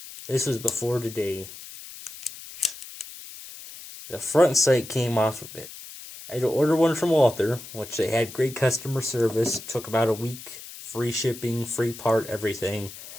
This was before today. The front sight came off of it. I had to order one from Walther, which they had great customer service. Took about a week. Free shipping, free part, everything.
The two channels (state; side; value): noise; left; hiss, 14 dB below the sound